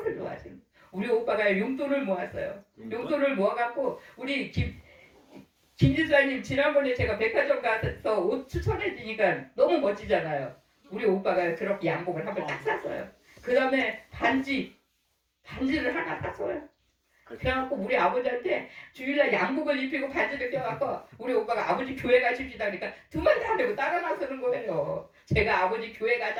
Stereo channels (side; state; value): both; identical; correlation 1.00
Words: 좋아하시는. 우리 오빠가 용돈을 모았어요. 용돈을 모아갖고 우리 김지수님 지난번에 제가 백화점 가서 옷 추천해 주니까 너무 멋지잖아요. 우리 오빠가 그렇게 양복을 한 번 딱 샀어요. 그 다음에 반지를 하나 샀어요. 그래갖고 우리 아버지한테 주일날 양복을 입히고 반지를 껴갖고 우리 오빠가 아버지 교회 가십시다 그러니까 두 마디 안 하고 따라 나서는 거예요. 제가 아버지 교회